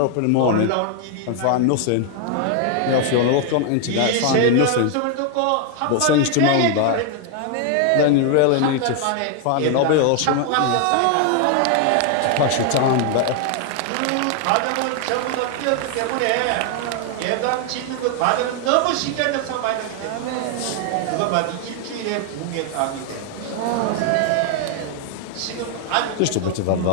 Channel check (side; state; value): both; different; correlation 0.00